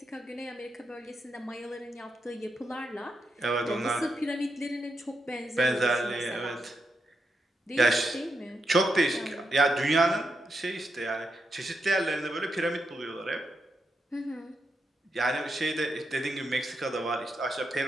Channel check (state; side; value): normal; both; correlation 0.84